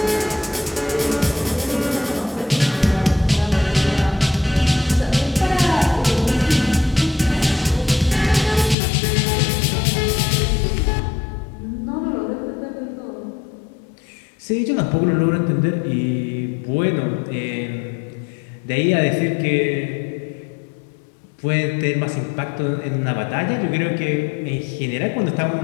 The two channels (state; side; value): drops out; right; at 8.8 s